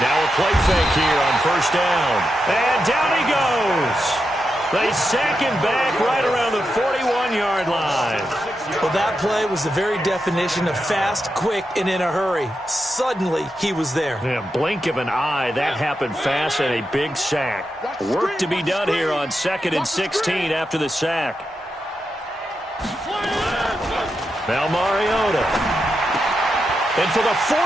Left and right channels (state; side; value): normal; both; correlation 0.87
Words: Now a play fake here on 1st down. And down he goes. They sack him back right around the 41-yard line. Well, that play was the very definition of fast, quick, and in a hurry. Suddenly, he was there. Yeah, blink of an eye. That happened fast and a big sack. Work to be done here on 2nd and 16 after the sack. Now Mariota. And for the